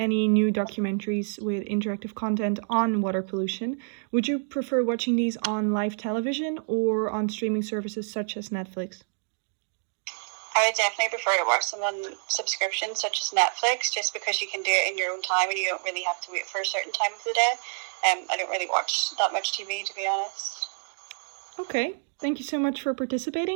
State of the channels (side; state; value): left; silent; digital silence